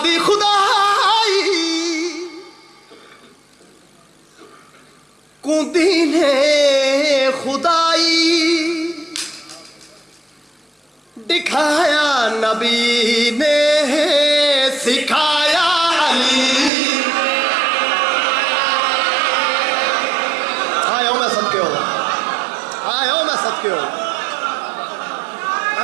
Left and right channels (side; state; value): left; drops out; at 16.7 s